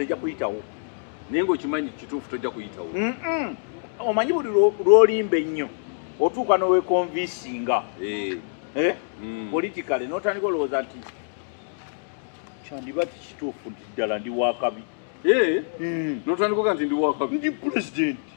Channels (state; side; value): silent; right; digital silence